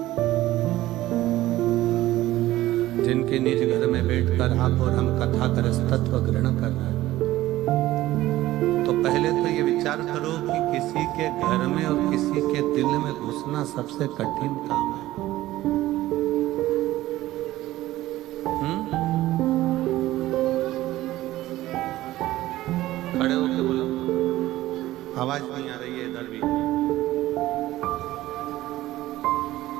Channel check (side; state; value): left; quieter; 15.9 dB